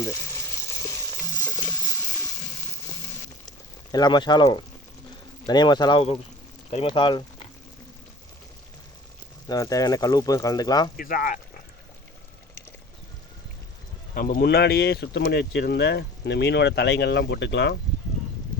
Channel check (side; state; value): both; normal; correlation 0.42